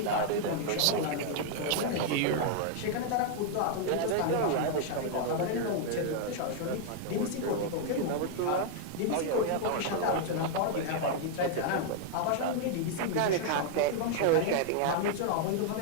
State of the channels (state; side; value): different; both; correlation 0.00